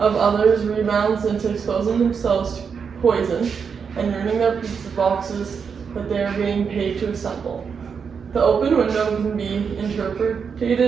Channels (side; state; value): left; quieter; 6.3 dB